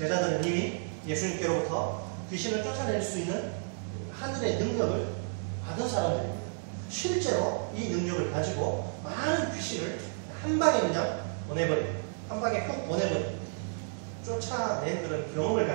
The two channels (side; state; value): left; silent; digital silence